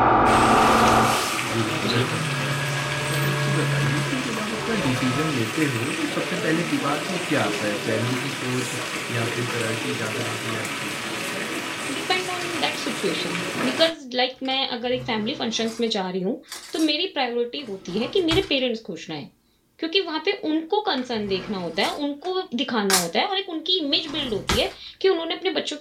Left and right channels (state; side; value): identical; both; correlation 1.00